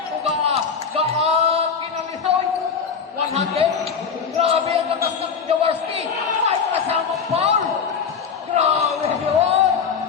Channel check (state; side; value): quieter; right; 6.2 dB